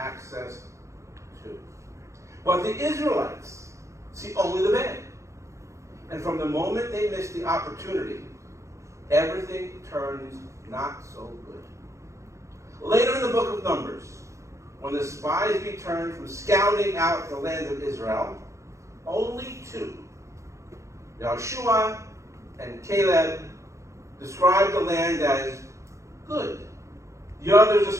to. But the Israelites see only the bad. And from the moment they miss the opportunity, everything turns not so good. Later in the book of Numbers, when the spies returned from scouting out the land of Israel, only two, Joshua and Caleb, described the land as good. The others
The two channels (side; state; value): left; late; 0.15 ms